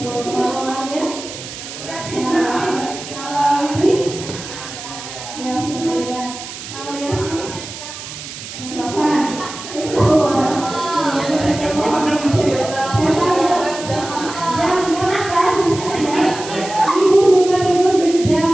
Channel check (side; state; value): right; noise; hiss, 11 dB below the sound